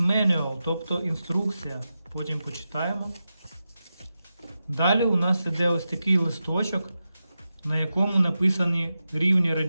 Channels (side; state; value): both; inverted; correlation -0.91